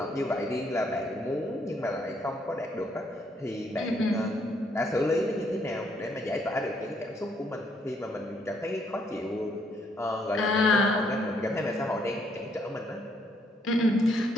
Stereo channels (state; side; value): normal; both; correlation 0.71